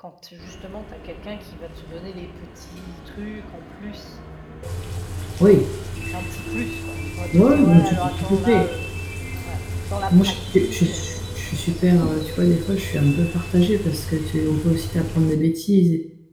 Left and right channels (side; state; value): both; identical; correlation 1.00